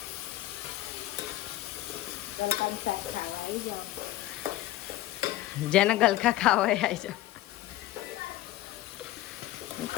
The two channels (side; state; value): right; quieter; 15.8 dB